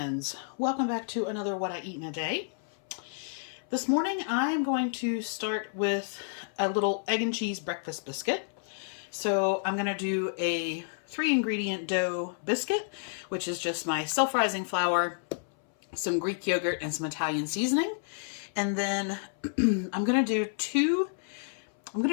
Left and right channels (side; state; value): right; silent; 58 dB below the other